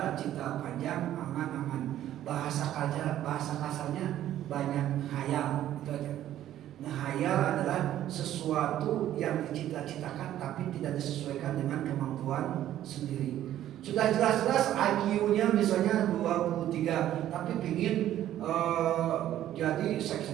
cita panjang, angan-angan. Bahasa kasarnya banyak hayal, itu aja. Ngehayal adalah sesuatu yang dicita-citakan tapi tidak disesuaikan dengan kemampuan sendiri. Sudah jelas-jelas IQ-nya misalnya 23, tapi pingin jadi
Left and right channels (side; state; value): left; quieter; 12.3 dB